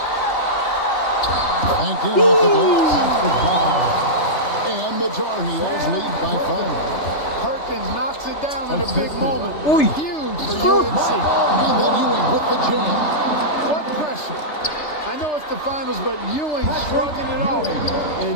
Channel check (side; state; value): right; late; 3.3 ms